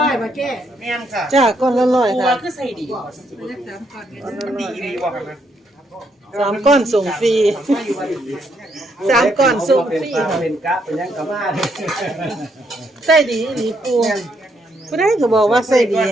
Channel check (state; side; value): normal; both; correlation 0.75